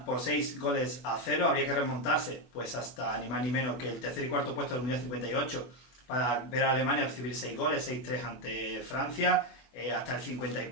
por 6-0. Habría que remontarse pues hasta ni más ni menos que el tercer y cuarto puesto del Mundial 58 para ver a Alemania recibir 6 goles, 6-3 ante Francia, hasta el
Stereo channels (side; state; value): right; late; 24 ms